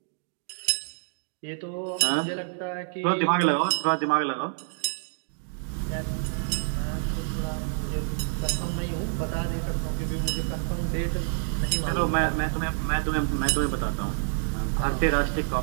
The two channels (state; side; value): silent; left; digital silence